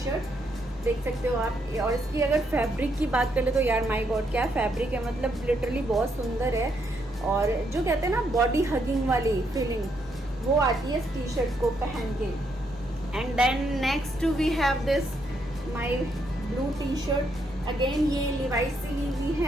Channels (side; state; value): both; normal; correlation 0.76